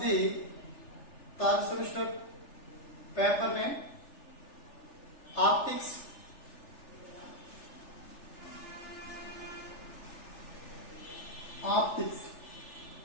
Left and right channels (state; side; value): late; right; 3.4 ms